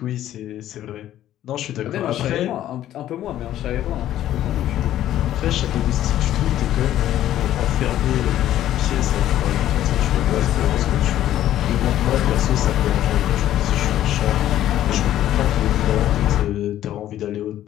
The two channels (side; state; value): right; quieter; 12.5 dB